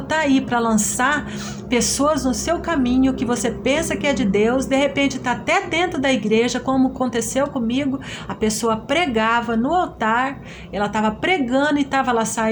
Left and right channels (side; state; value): both; identical; correlation 1.00